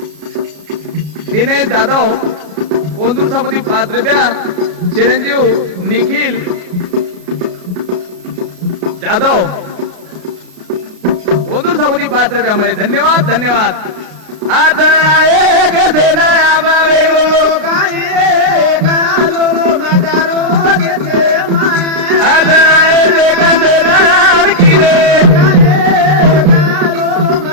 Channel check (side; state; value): left; late; 32 ms